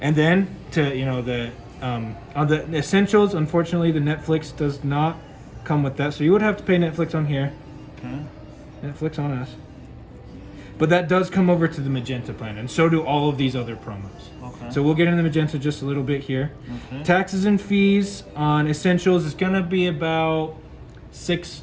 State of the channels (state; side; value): identical; both; correlation 1.00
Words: And then to on the essentials, unfortunately the Netflix does not come with that. So you would have to pay Netflix on here. Okay. Netflix on us. But that does come over to the Magenta plan, and so do all of these other promos. Okay. So we'll get into the Magenta just a little bit here. Okay. Taxes and fees on essentials is gonna be about